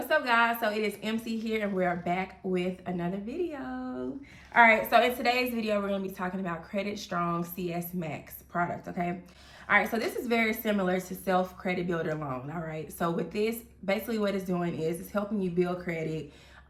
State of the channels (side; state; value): both; identical; correlation 1.00